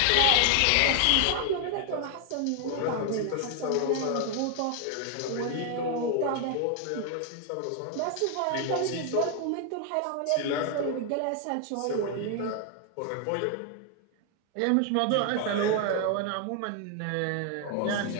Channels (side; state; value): both; different; correlation 0.00